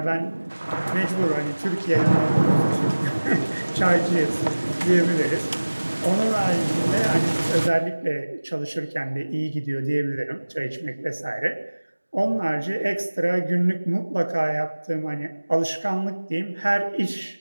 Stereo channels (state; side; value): inverted; both; correlation -1.00